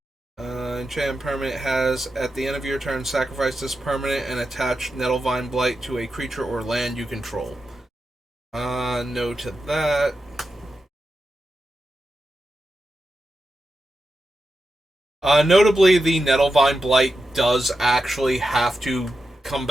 Enchantment permanent has, at the end of your turn, sacrifice this permanent and attach Nettlevine Blight to a creature or land you control. No to that. Notably, the Nettlevine Blight does actually have to come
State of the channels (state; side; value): normal; both; correlation 0.89